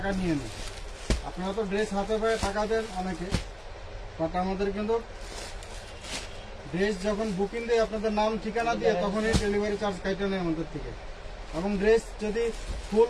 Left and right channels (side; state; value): both; identical; correlation 1.00